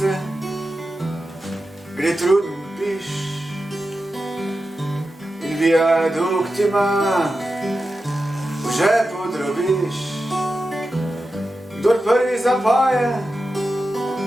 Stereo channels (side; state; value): both; normal; correlation 0.91